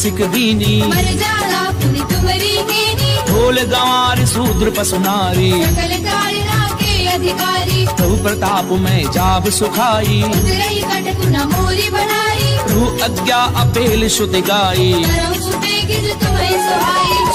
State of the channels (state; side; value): identical; both; correlation 1.00